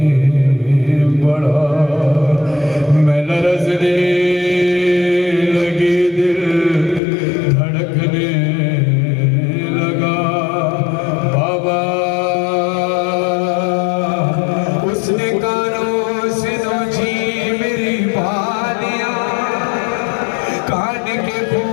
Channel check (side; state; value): right; drops out; at 7.0 s